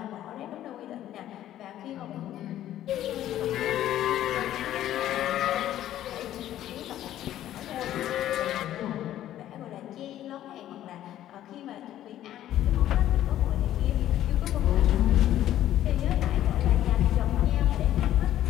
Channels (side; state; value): right; quieter; 12.5 dB